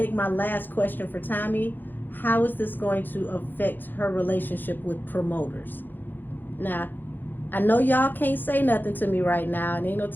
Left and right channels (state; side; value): late; right; 0.090 ms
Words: my last question for Tommy. How is this going to affect her relationship with promoters? Now, I know y'all can't say nothing to me right now, and ain't no